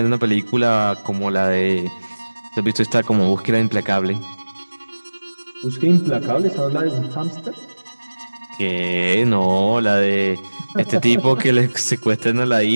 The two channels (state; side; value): inverted; both; correlation -1.00